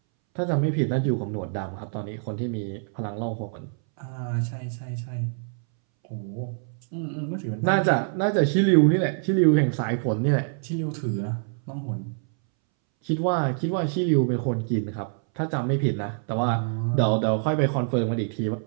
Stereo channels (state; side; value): silent; left; 61 dB below the other